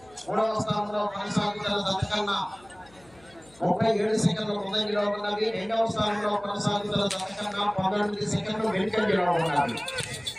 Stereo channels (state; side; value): noise; left; hum, 28 dB below the sound